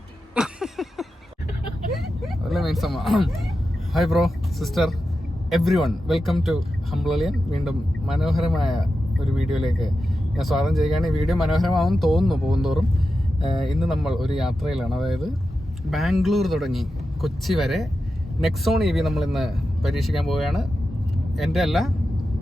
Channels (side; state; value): both; normal; correlation 0.91